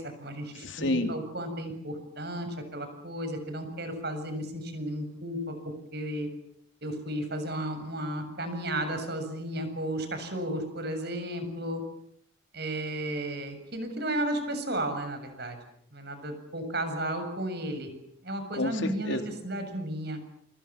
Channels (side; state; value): both; normal; correlation 0.26